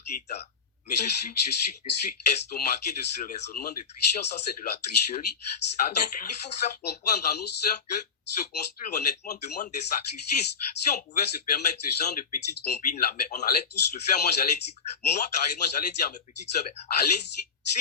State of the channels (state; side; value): quieter; right; 5.7 dB